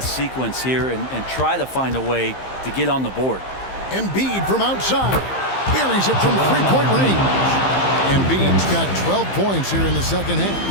sequence here, and try to find a way to get on the board. Embiid from outside. Buries it from 3-point range. Embiid's got 12 points here in the 2nd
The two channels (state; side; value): late; right; 15 ms